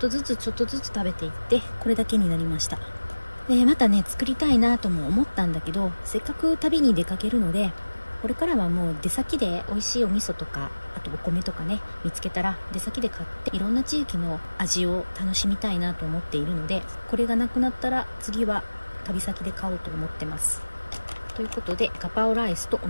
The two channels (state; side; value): inverted; both; correlation -1.00